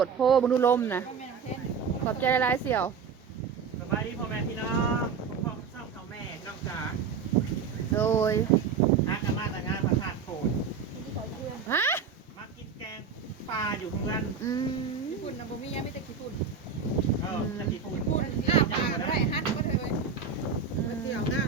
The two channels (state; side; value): quieter; left; 6.1 dB